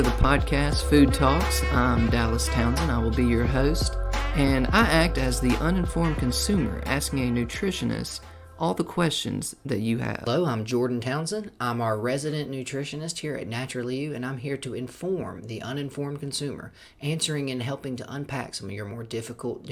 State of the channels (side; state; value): both; identical; correlation 1.00